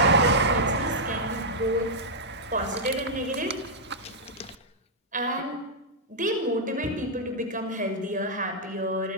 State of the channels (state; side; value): normal; both; correlation -0.07